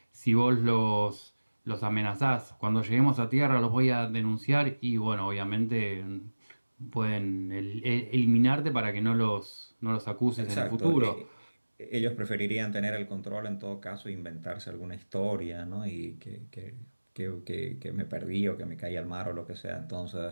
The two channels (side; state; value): both; inverted; correlation -1.00